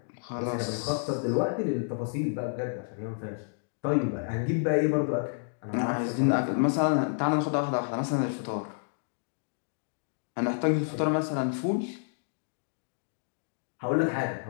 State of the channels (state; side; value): silent; right; digital silence